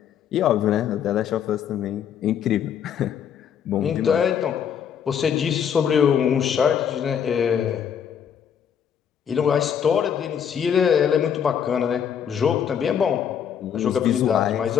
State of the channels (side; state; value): right; quieter; 8.3 dB